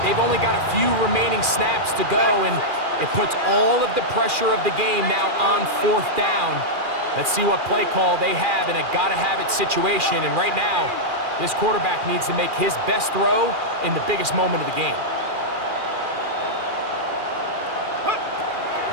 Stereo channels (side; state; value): left; late; 2.4 ms